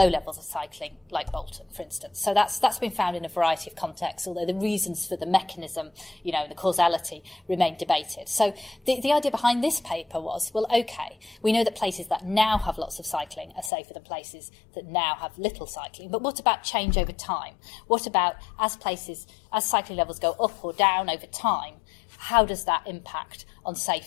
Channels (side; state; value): right; drops out; at 13.7 s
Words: levels of cycling like Bolton, for instance. So that's been found in a variety of contexts, although the reasons for the mechanism, the causality remain debated. So the idea behind this paper was, well, okay, we know that places that now have lots of cycling are safer than places that now have little cycling, but what about change over time? What about as cycling levels go up or down over time, how does that impact on